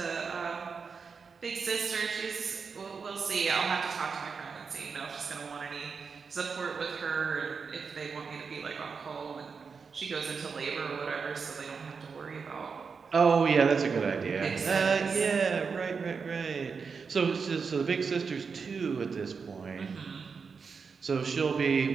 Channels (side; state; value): left; quieter; 5.4 dB